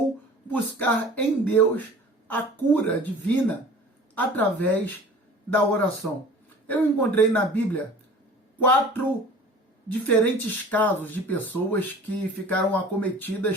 buscar em Deus a cura divina através da oração? Eu encontrei na Bíblia 4 diferentes casos de pessoas que ficaram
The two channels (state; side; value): normal; both; correlation 0.44